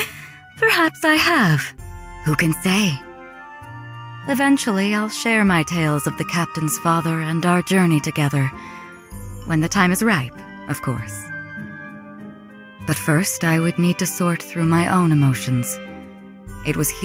Perhaps I have. Who can say? Eventually, I'll share my tales of the captain's father and our journey together. When the time is ripe, of course. But first, I would need to sort through my own emotions. It was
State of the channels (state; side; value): identical; both; correlation 1.00